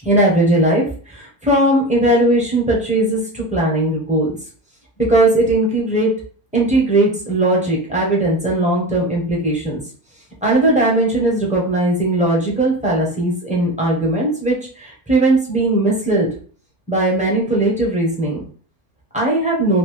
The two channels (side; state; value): both; normal; correlation 0.26